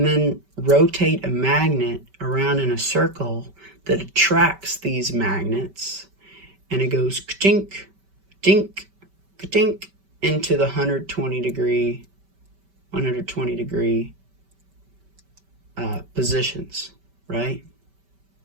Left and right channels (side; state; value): left; late; 5.2 ms